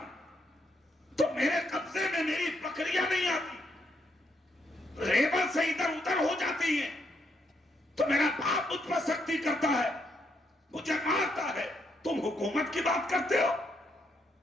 تو میرے قبضے میں میری بکریاں نہیں آتی، ریبر سے ادھر ادھر ہو جاتی ہیں تو میرا باپ مجھ پر سختی کرتا ہے، مجھے مارتا ہے. تم حکومت کی بات کرتے ہو؟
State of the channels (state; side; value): normal; both; correlation 0.77